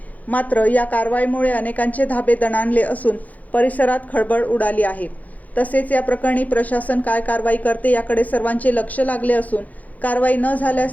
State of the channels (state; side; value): late; right; 0.077 ms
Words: मात्र या कारवाईमुळे अनेकांचे धाबे दणाणले असून परिसरात खळबळ उडाली आहे। तसेच या प्रकरणी प्रशासन काय कारवाई करते याकडे सर्वांचे लक्ष लागले असून कारवाई न